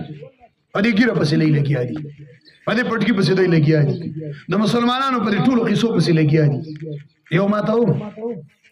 په دې ګیره پسې دی لګیا دي په دې پټکي پسې دی لګیا دي د مسلمانانو په دې ټولو قصو پسې لګیا دي یو ما ته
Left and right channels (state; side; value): identical; both; correlation 1.00